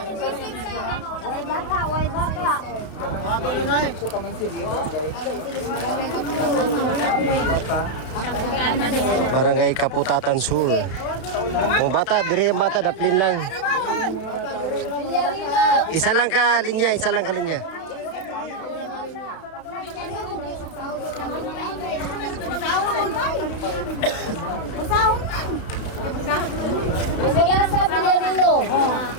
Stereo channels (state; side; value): late; right; 32 ms